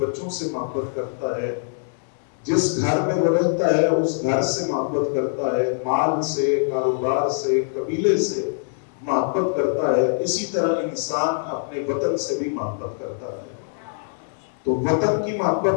سے محبت کرتا ہے، جس گھر میں وہ رہتا ہے اس گھر سے محبت کرتا ہے، مال سے، کاروبار سے، قبیلے سے محبت کرتا ہے۔ اسی طرح انسان اپنے وطن سے بھی محبت کرتا ہے۔ تو وطن کی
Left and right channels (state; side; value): silent; right; digital silence